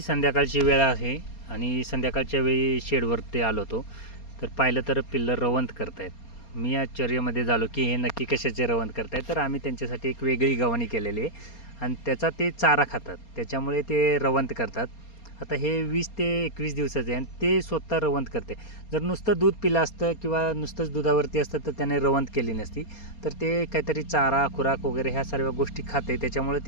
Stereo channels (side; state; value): right; late; 4.3 ms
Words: संध्याकाळची वेळ आहे आणि संध्याकाळच्या वेळी शेडवरती आलो होतो, तर पाहिलं तर पिल्लं रवंत करतायत. मी आश्चर्यामध्ये झालो की हे नक्की कशाचे रवंत करतायत. तर आम्ही त्यांच्यासाठी एक वेगळी गव्हाणी केलेली आहे आणि त्याचा ते चारा खातात, त्याच्यामुळे ते रवंत करतात. आता हे 20 ते 21 दिवसाचे आहे आणि ते स्वतः रवंत करते. जर नुसतं दूध पिलं असतं किंवा नुसतंच दुधावरती असतं तर त्याने रवंत केली नसती. तर ते काहीतरी चारा खुराक वगैरे ह्या सर्व गोष्टी खाते, त्याच्यामुळे